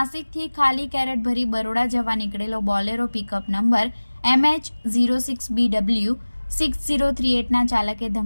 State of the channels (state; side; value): inverted; both; correlation -1.00